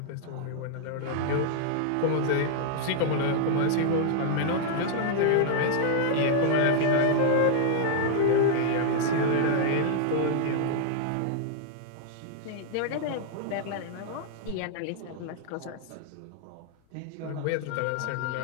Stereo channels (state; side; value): different; both; correlation -0.01